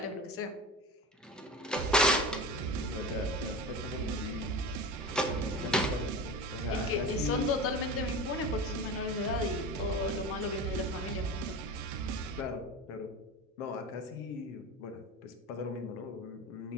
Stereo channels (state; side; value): normal; both; correlation 0.30